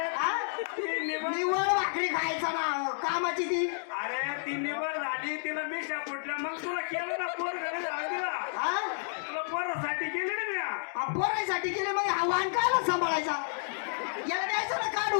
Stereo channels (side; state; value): right; silent; digital silence